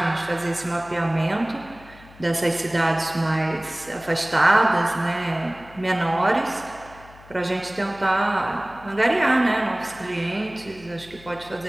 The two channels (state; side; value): noise; left; hum, 22 dB below the sound